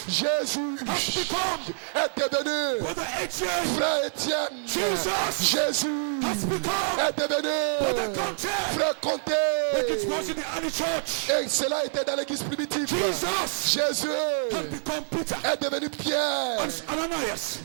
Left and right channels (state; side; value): silent; left; digital silence